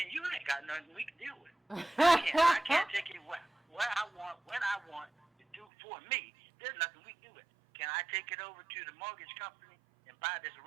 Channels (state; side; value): drops out; left; at 5.7 s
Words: and you ain't got nothing we can deal with. I can't take it where I want, when I want to do for me. There's nothing we can do with it. Can I take it over to the mortgage company and buy this